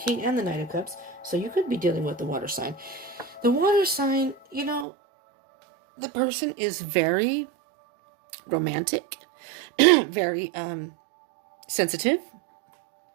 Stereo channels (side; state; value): left; drops out; at 4.9 s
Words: and the Knight of Cups, so you could be dealing with the water sign. The water sign, you know, the person is very romantic, very sensitive.